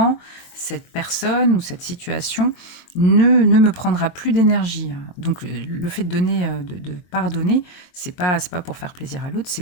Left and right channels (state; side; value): late; right; 22 ms